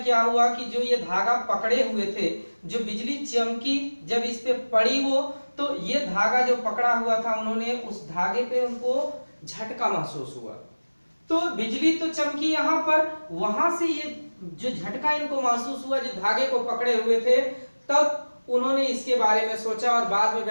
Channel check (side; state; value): both; inverted; correlation -1.00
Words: हुआ कि जो ये धागा पकड़े हुए थे, जो बिजली चमकी जब इस पे पड़ी वो, तो ये धागा जो पकड़ा हुआ था, उन्होंने उस धागे पे उनको झटका महसूस हुआ। तो बिजली तो चमकी यहाँ पर, वहां से ये जो झटका इनको महसूस हुआ, जो धागे को पकड़े हुए थे, तब उन्होंने इसके बारे में सोचा और बाद में